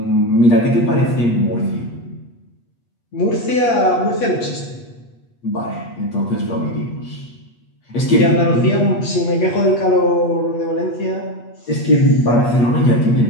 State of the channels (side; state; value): right; late; 8.3 ms